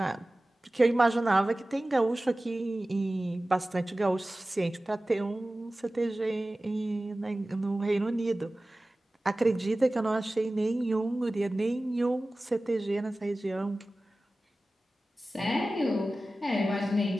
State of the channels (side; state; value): both; normal; correlation 0.96